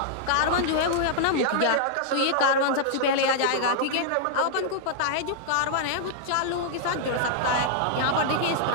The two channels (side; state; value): both; different; correlation -0.01